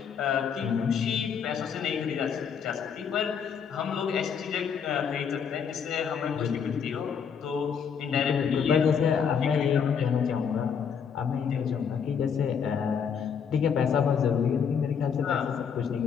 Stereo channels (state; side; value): quieter; right; 7.0 dB